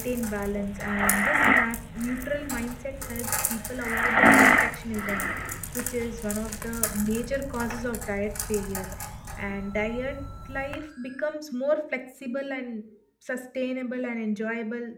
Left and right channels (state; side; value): identical; both; correlation 1.00